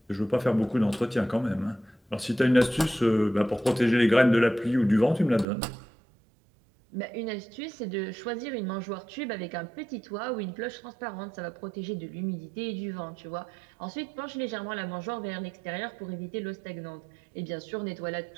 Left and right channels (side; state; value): left; drops out; at 5.5 s